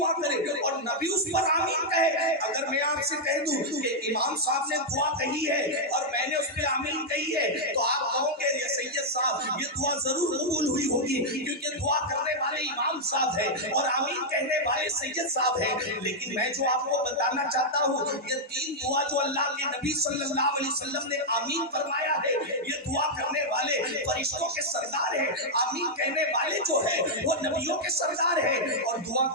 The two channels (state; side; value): normal; both; correlation -0.04